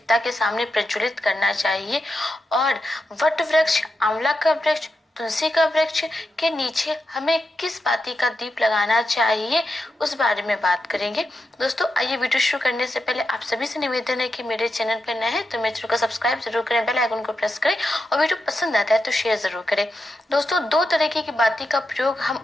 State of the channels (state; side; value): normal; both; correlation 0.87